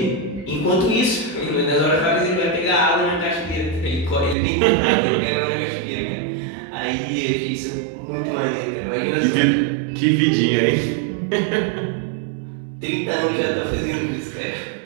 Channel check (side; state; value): left; drops out; at 4.4 s